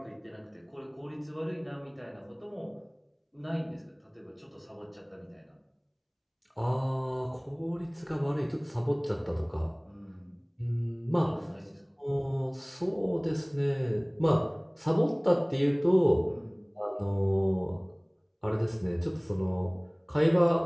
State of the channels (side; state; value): both; identical; correlation 1.00